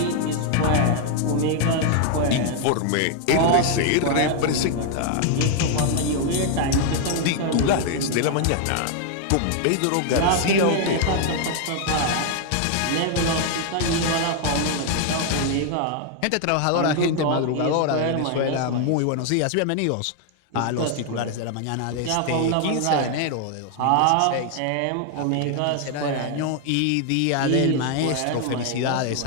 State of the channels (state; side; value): different; both; correlation 0.00